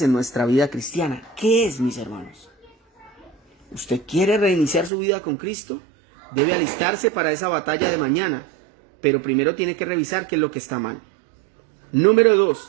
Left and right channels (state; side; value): drops out; left; at 4.9 s